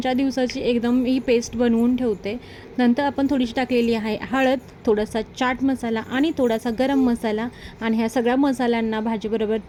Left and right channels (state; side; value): identical; both; correlation 1.00